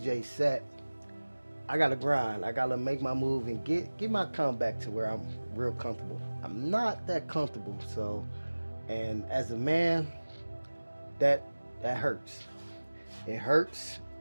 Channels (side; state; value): both; inverted; correlation -1.00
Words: set, I gotta grind. I gotta make my move and get my account back to where I'm real comfortable. I'm not that comfortable. So, and as a man, that hurts. It hurts.